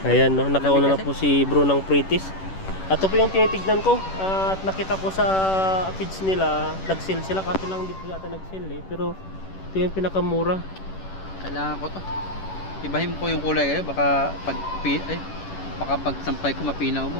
Ayan, no? Nakauna na po si bro ng Pritis. At ito po yung tinitignan ko. At nakita ko sa page nila, nag-sale sila. Kaso lang hindi po yata nag-sale eh. Pero ito yung pinakamura. Kailangan ko to. Ibahin ko yung kulay kayo. Baka pag sampay ko mapinaw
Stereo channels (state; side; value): late; right; 10 ms